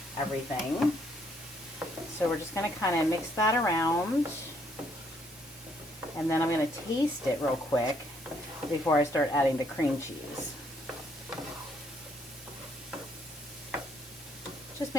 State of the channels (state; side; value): normal; both; correlation 0.69